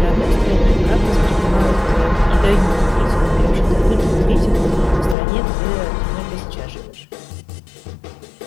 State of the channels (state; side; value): drops out; right; at 5.2 s